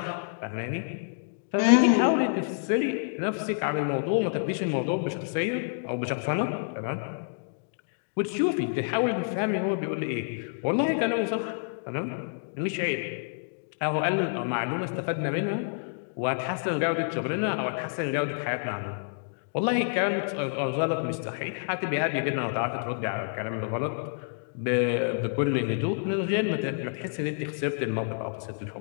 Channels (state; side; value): silent; right; digital silence